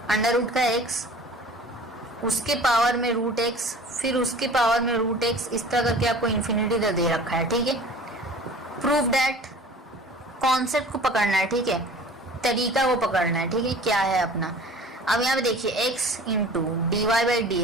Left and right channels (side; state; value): both; normal; correlation 0.44